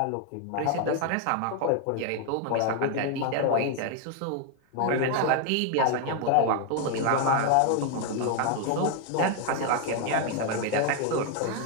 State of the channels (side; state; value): both; different; correlation 0.01